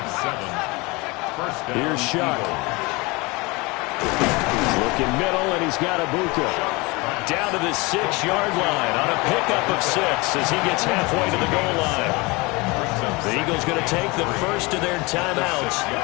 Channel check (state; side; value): quieter; right; 25.2 dB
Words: 7. First down. Here's Shuck. Looking middle, and he's got Ibuka. Down to the 6-yard line on a pickup of 6 as he gets halfway to the goal line. The Eagles going to take the first of their timeouts